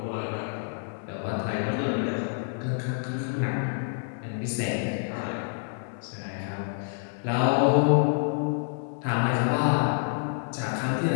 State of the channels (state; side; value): silent; right; 59 dB below the other